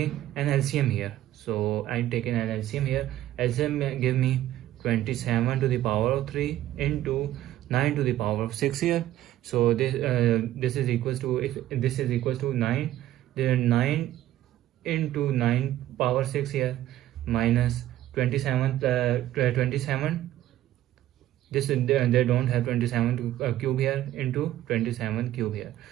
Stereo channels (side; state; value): left; quieter; 13.7 dB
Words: an LCM here. So I'm taking an LCM here. LCM give me 27 to the power of 3 into 9 to the power of 6 here. So this is equals to, if this is equals to 9, then 9 into 9 power 6 here minus 27 this they don't have 27 to cube here into 27 cube here.